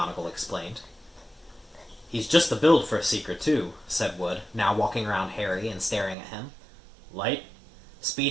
explained. "He's just the build for a seeker, too," said Wood, now walking around Harry and staring at him. "Light?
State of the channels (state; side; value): drops out; left; at 6.2 s